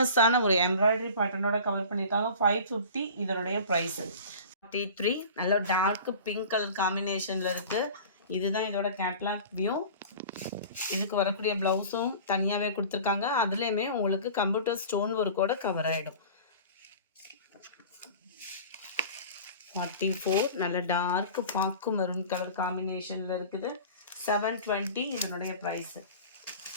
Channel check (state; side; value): inverted; both; correlation -0.39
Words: ஒரு எம்ப்ராய்டரி பேட்டர்னோட கவர் பண்ணியிருக்காங்க. 550 இதனுடைய ப்ரைஸு. 43 நல்ல டார்க் பிங்க் கலர் காம்பினேஷனில் இருக்குது. இதுதான் இதோட கேட்லாக் வியூ. இதுக்கு வரக்கூடிய ப்ளவுஸும் தனியாகவே கொடுத்துருக்காங்க. அதுலேயுமே உங்களுக்கு கம்ப்யூட்டர் ஸ்டோன் ஒர்க்கோட கவர் ஆகிடும். 44 நல்ல டார்க் பாக்கு மெரூன் கலர் காம்பினேஷனில் இருக்குது. 720 இதனுடைய ப்ரைஸு.